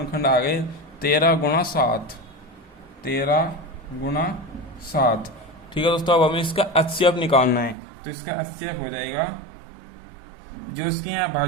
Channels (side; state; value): left; drops out; at 7.8 s